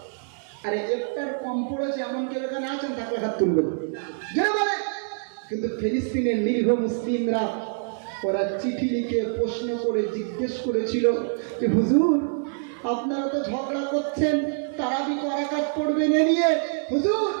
আরে ইফতার কম পড়েছে এমন কেউ এখানে আছেন? তাকে হাত তুলবেন, যারা বলে। কিন্তু ফিলিস্তিনের নিরীহ মুসলিমরা, ওরা চিঠি লিখে প্রশ্ন করে জিজ্ঞেস করেছিল যে হুজুর আপনারা তো ঝগড়া করছেন, তারাবি রাকাত পড়বেন এ নিয়ে, হুজুর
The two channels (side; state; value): left; silent; digital silence